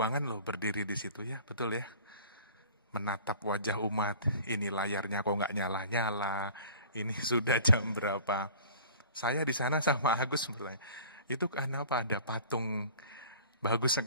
loh berdiri di situ ya, betul ya. Menatap wajah umat, ini layarnya kok nggak nyala-nyala, ini sudah jam berapa. Saya di sana sama Agus bertanya, itu kenapa ada patung bagus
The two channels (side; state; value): both; inverted; correlation -0.45